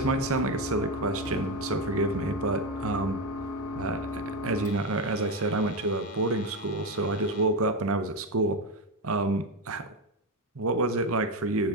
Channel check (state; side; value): normal; both; correlation 0.12